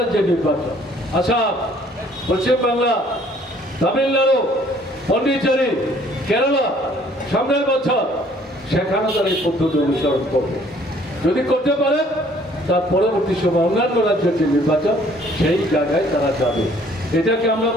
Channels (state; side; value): normal; both; correlation 0.59